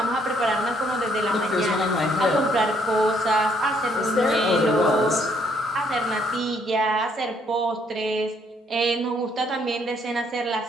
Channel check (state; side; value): normal; both; correlation 0.68